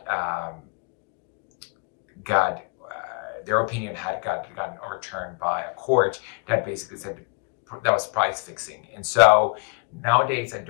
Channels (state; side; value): quieter; right; 35.9 dB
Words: their opinion had gotten overturned by a court that basically said that was price fixing. And so nowadays a